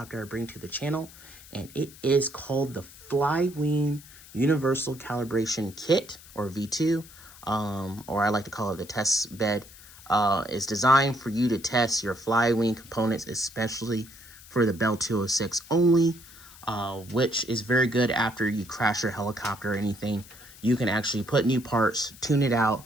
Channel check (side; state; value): left; noise; hiss, 20 dB below the sound